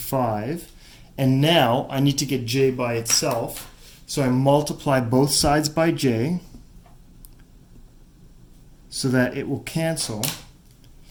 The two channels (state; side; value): identical; both; correlation 1.00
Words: And now I need to get j by itself, so I multiply both sides by j so that it will cancel.